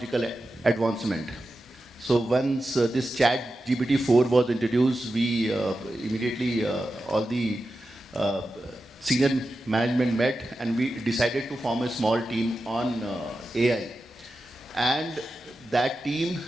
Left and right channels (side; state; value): both; normal; correlation 0.91